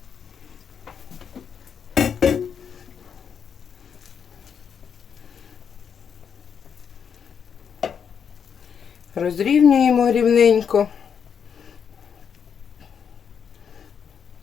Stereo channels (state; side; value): quieter; right; 7.3 dB